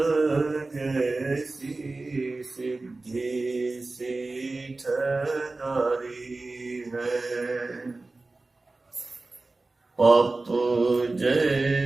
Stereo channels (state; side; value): quieter; left; 3.3 dB